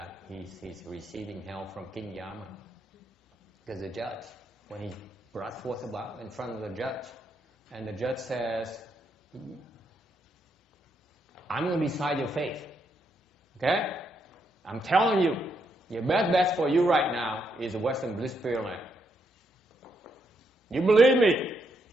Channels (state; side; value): normal; both; correlation 0.78